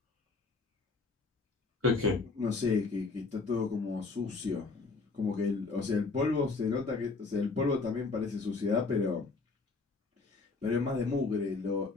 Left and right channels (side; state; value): right; quieter; 4.0 dB